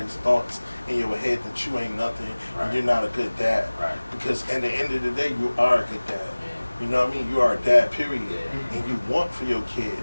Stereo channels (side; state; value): both; inverted; correlation -1.00